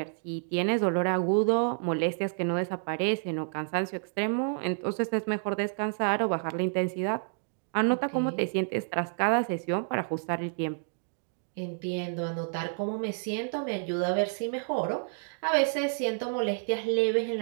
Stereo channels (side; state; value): left; silent; 58 dB below the other